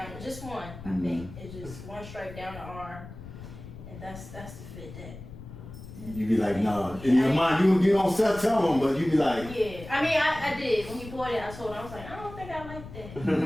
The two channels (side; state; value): left; noise; rumble, 14 dB below the sound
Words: just one, I think. It's just one stripe down the arm, and that's the fit that. You be like, nah. In your mind, you don't tell them, but you be like, Yeah, I mean, I did. When he bought it, I told him, I was like, I don't think I like that.